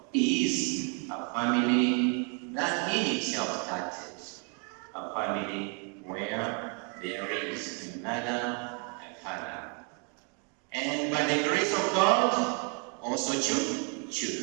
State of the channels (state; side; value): quieter; left; 36.9 dB